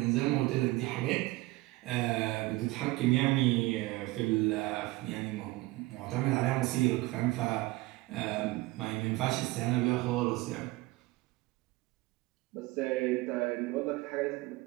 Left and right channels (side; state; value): left; quieter; 20.2 dB